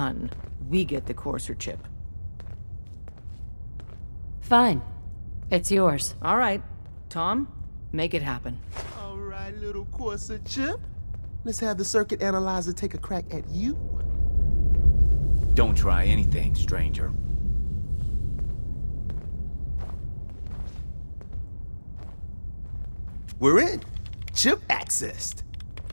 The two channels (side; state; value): both; inverted; correlation -1.00